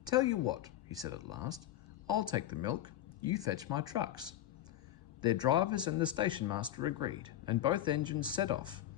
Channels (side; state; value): right; quieter; 12.4 dB